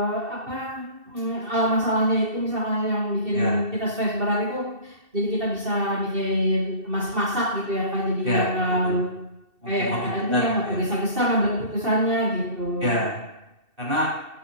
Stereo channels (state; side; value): late; left; 2.7 ms